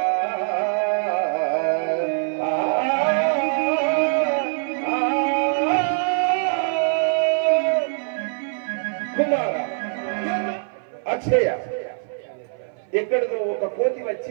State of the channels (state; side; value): silent; left; 59 dB below the other